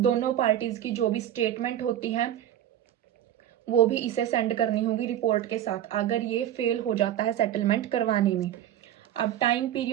पार्टीज की जो भी स्टेटमेंट होती है वो भी इसे सेंड करनी होगी रिपोर्ट के साथ, अगर ये फेल हो जाता है सेटलमेंट करवाने में। अब time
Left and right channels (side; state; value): left; quieter; 11.5 dB